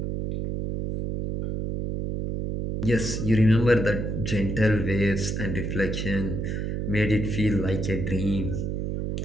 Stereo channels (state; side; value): noise; right; hum, 2 dB below the sound